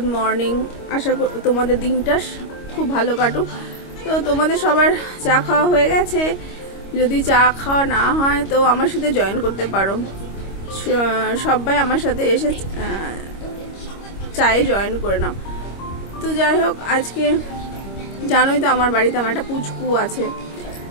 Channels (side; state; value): right; late; 25 ms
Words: মর্নিং। আশা করি তোমাদের দিনটা খুব ভালো কাটুক। তো তোমাদের সবার চা খাওয়া হয়ে গেছে? যদি চা খাওয়া না হয় তো আমার সাথে জয়েন করতে পারো। সবাই আমার সাথে এসে চায়ে জয়েন করে নাও। তো যাই হোক, আজকে জানোই তো আমার বাড়িতে আমার একটা পুচকু আছে,